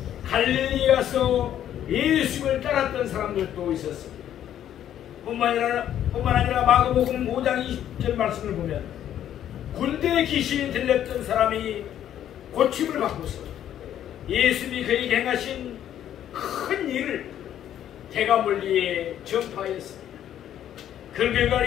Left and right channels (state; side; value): quieter; right; 10.8 dB